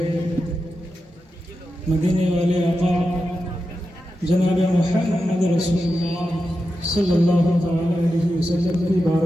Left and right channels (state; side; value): normal; both; correlation 0.90